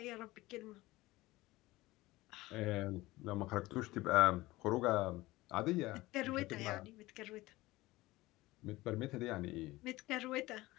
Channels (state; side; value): quieter; right; 19.1 dB